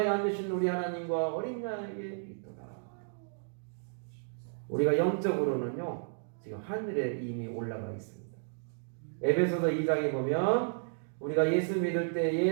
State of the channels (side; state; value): left; silent; digital silence